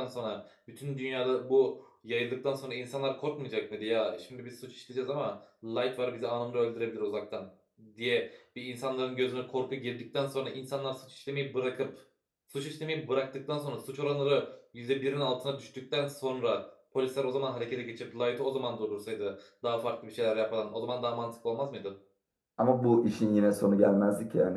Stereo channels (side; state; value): both; identical; correlation 1.00